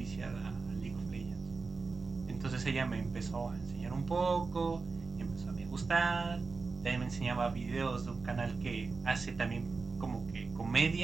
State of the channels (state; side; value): quieter; left; 4.3 dB